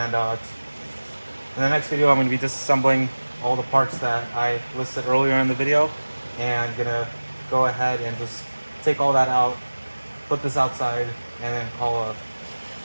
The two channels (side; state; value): both; inverted; correlation -1.00